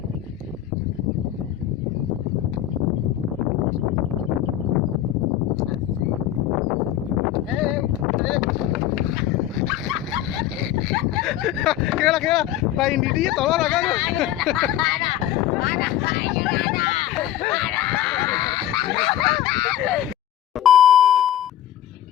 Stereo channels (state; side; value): quieter; right; 12.2 dB